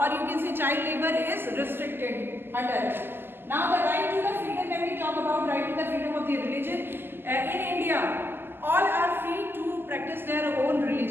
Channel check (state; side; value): late; left; 0.10 ms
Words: or you can say child labor is restricted under it. Now the right to the freedom, when we talk about right to the freedom of the religion, in India all are free to practice their own